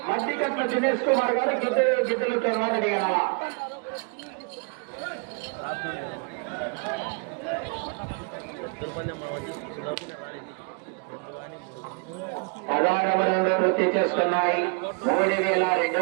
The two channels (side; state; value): left; quieter; 34.0 dB